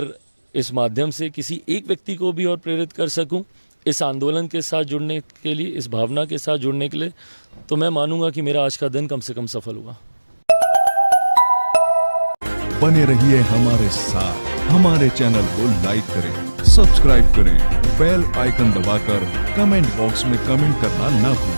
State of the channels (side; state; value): both; inverted; correlation -1.00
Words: इस माध्यम से किसी एक व्यक्ति को भी और प्रेरित कर सकूं इस आंदोलन के साथ जुड़ने के लिए, इस भावना के साथ जुड़ने के लिए, तो मैं मानूंगा कि मेरा आज का दिन कम से कम सफल हुआ। बने रहिए हमारे साथ, हमारे चैनल को लाइक करें, सब्सक्राइब करें, बेल आइकन दबाकर कमेंट बॉक्स में कमेंट करना ना